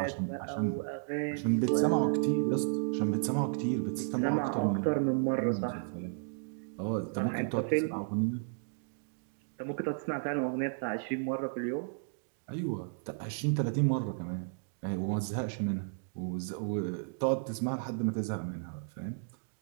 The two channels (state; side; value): silent; left; digital silence